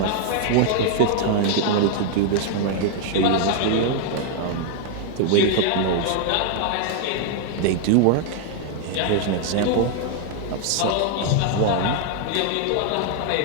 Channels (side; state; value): both; different; correlation 0.00